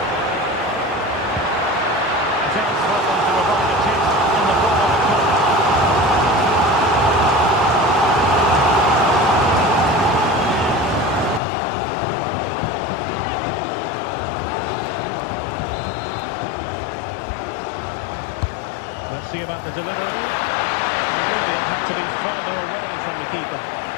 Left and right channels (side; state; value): right; drops out; at 11.4 s